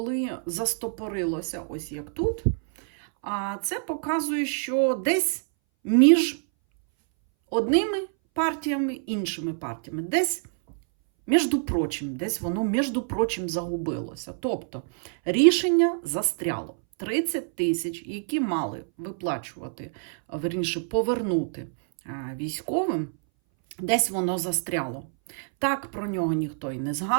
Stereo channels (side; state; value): left; silent; 59 dB below the other